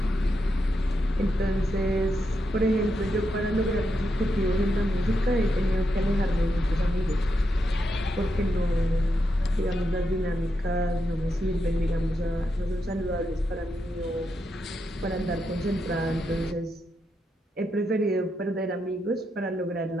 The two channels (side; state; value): both; normal; correlation 0.84